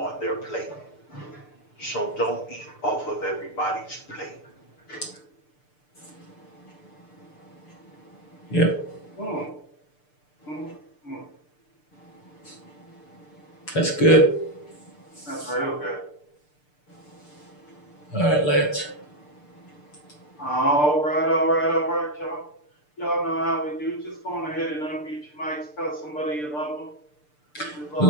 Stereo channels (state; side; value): late; right; 6.7 ms